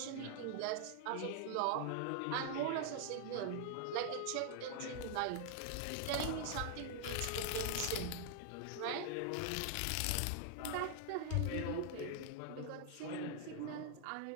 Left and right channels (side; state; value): both; different; correlation 0.00